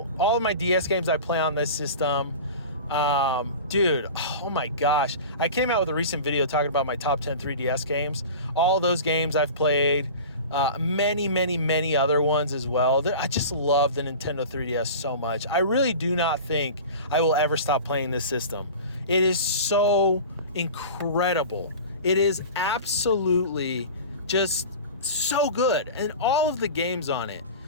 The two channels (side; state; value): both; inverted; correlation -0.35